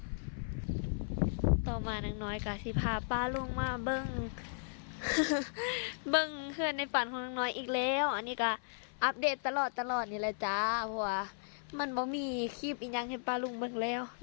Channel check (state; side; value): silent; right; 54 dB below the other